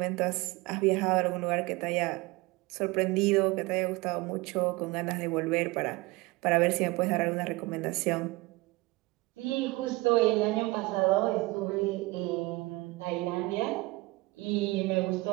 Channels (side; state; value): left; quieter; 22.3 dB